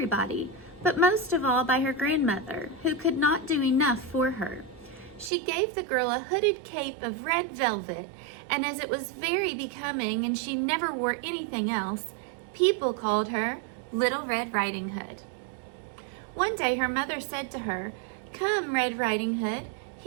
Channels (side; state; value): left; drops out; at 5.3 s